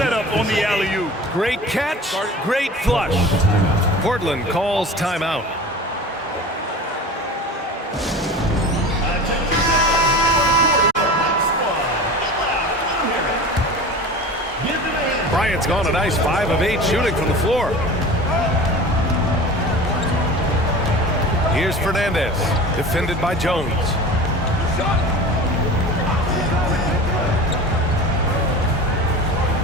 on the alley-oop. Great catch, great flush. Portland calls timeout. Bryant's gone a nice 5 of 8 shooting from the floor. Here's Fernandez, defended by Jones.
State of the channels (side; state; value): both; normal; correlation 0.36